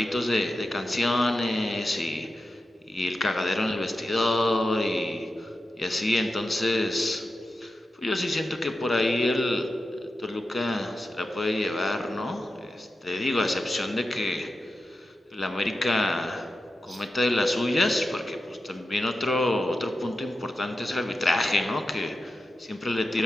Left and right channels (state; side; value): normal; both; correlation 0.91